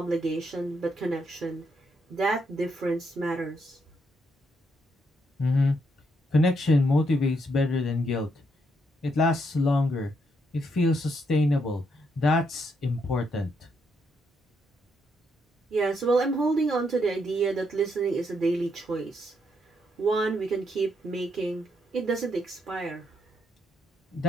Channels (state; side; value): normal; both; correlation 0.76